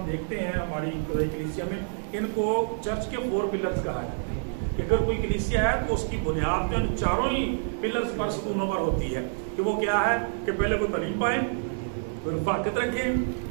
देखते हैं हमारी कलीसिया में, इनको चर्च के 4 पिलर्स कहा जाता है कि अगर कोई कलीसिया है तो उसकी बुनियाद तो इन चारों ही पिलर्स पर, सतूनों पर होती है कि वो क्या है कि पहले वो तालीम पाए, रफाकत रखें,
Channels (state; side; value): silent; left; digital silence